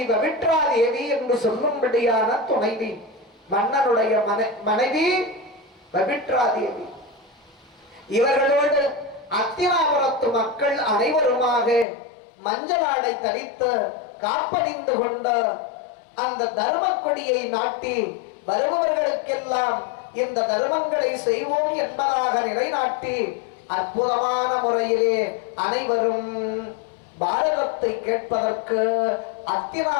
பவித்ரா தேவி என்று சொல்லும்படியான துணைவி, மன்னனுடைய மனைவி பவித்ரா தேவி, இவர்களோடு அத்தினாபுரத்து மக்கள் அனைவருமாக மஞ்சளாடை தரித்து காப்பணிந்து கொண்ட அந்த தர்ம கொடியை நாட்டி வருபவர்களுக்கெல்லாம் இந்த தர்மங்களை செய்வோம் என்பதாக நிலைநாட்டி அற்புதமான முறையிலே அனைவரும் பாரதத்தை கேட்பதற்கு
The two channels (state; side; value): drops out; right; at 11.9 s